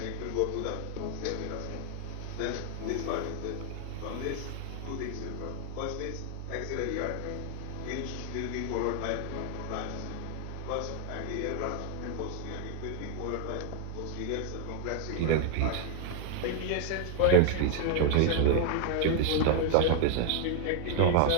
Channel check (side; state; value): both; different; correlation 0.00